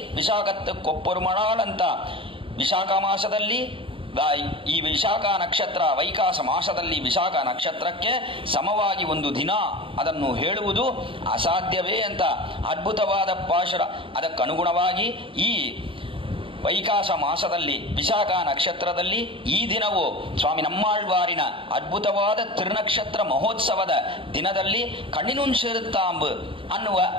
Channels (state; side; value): late; left; 0.25 ms